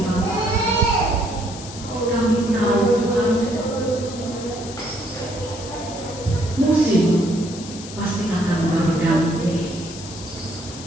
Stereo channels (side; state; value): left; noise; hiss, 13 dB below the sound